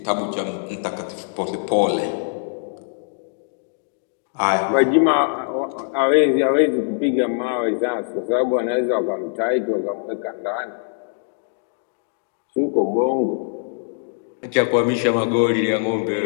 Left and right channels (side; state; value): right; silent; digital silence